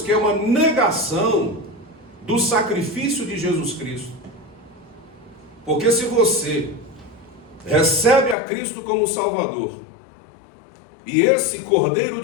que é uma negação do sacrifício de Jesus Cristo. Porque se você recebe a Cristo como Salvador, e esse Cordeiro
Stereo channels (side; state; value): right; drops out; at 8.3 s